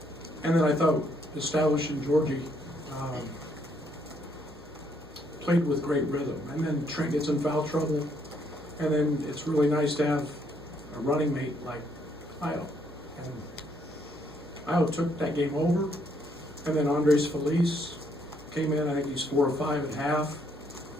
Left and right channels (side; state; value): both; normal; correlation 0.71